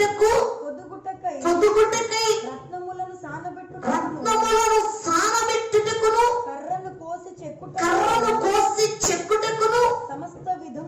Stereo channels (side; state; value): both; identical; correlation 1.00